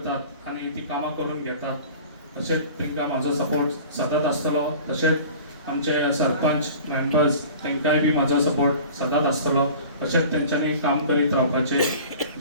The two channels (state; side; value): inverted; both; correlation -0.43